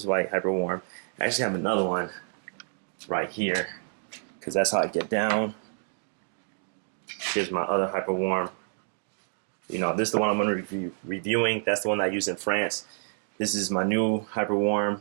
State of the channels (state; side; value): silent; left; digital silence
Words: white, hyper warm. I actually have another one right here, because that's how I get down. Here's my other hyper warm. This is the one I'm going to be reviewing. That's the one I use in France. This is my new hyper